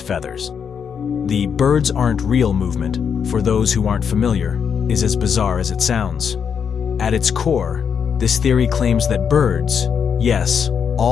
feathers. The birds aren't real movement, for those who aren't familiar, is as bizarre as it sounds. At its core, this theory claims that birds, yes,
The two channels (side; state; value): right; quieter; 7.1 dB